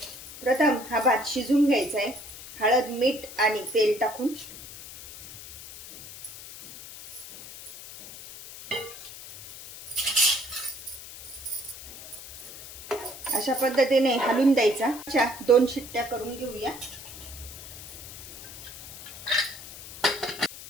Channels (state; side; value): noise; left; hiss, 14 dB below the sound